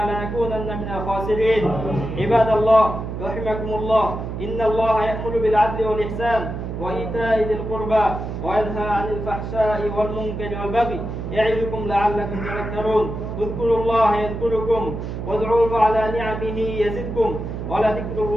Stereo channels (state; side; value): noise; right; hum, 6 dB below the sound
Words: لنكونن من الخاسرين. عباد الله رحمكم الله، إن الله يأمر بالعدل والإحسان وإيتاء ذي القربى وينهى عن الفحشاء والمنكر والبغي يعظكم لعلكم تذكرون. اذكروا الله يذكركم وادعوه على نعمه يزدكم ولذكر